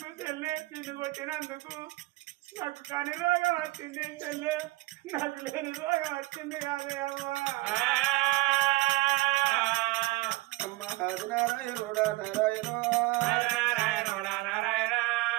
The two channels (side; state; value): left; quieter; 20.0 dB